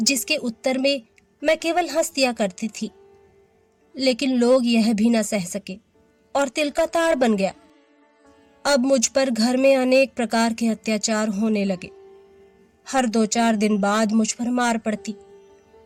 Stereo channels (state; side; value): identical; both; correlation 1.00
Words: उत्तर में मैं केवल हंस दिया करती थी। लेकिन लोग यह भी ना सह सके और तिल का ताड़ बन गया। अब मुझ पर घर में अनेक प्रकार के अत्याचार होने लगे। हर 2-4 दिन बाद मुझ पर मार पड़ती,